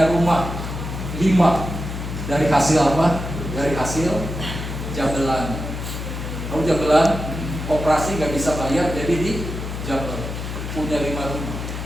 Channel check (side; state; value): left; noise; hum, 6 dB below the sound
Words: rumah 5 dari hasil apa? Dari hasil jabelan. Tahu jabelan? Operasi nggak bisa bayar, jadi di Jabal punya 5 rumah,